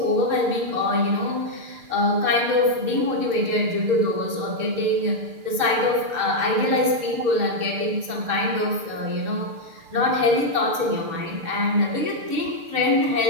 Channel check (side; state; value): left; late; 6.7 ms